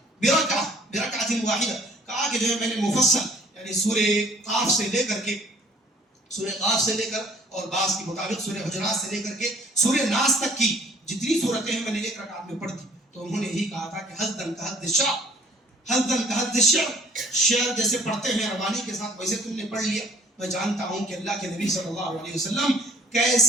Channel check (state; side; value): normal; both; correlation 0.56